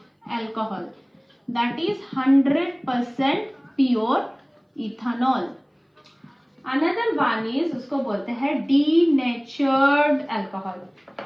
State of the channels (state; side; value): identical; both; correlation 1.00